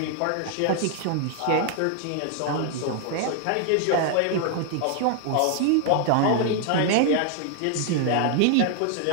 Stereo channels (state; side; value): different; both; correlation 0.00